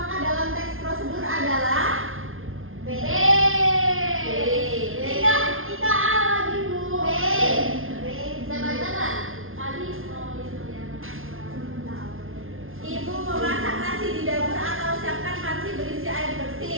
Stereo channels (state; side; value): late; left; 0.60 ms